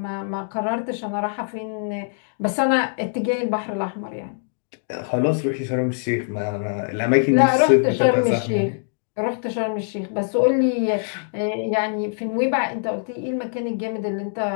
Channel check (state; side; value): silent; right; digital silence